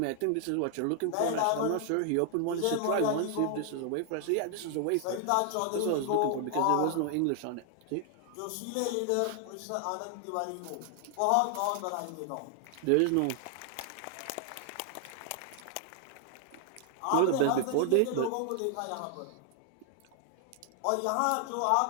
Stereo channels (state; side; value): different; both; correlation 0.00